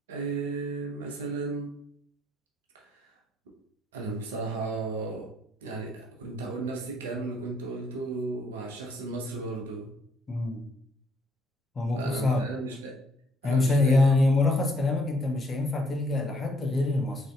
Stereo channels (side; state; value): both; normal; correlation 0.67